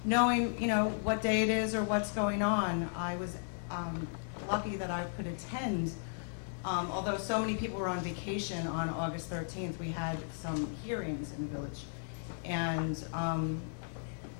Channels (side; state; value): right; silent; digital silence